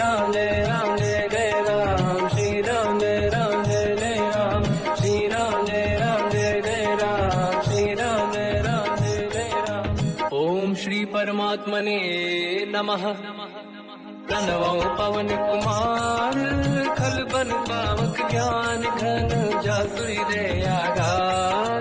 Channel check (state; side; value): identical; both; correlation 1.00